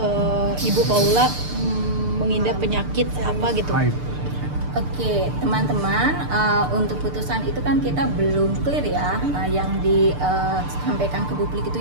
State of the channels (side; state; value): left; late; 6.7 ms